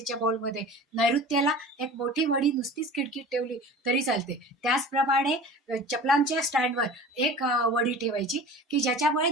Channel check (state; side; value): normal; both; correlation 0.39